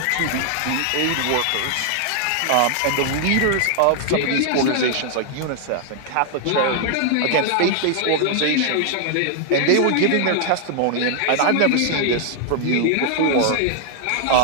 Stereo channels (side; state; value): both; different; correlation 0.00